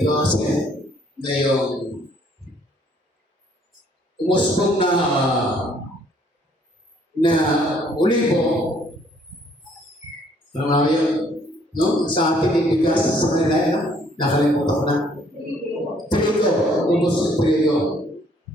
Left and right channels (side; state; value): both; normal; correlation 0.63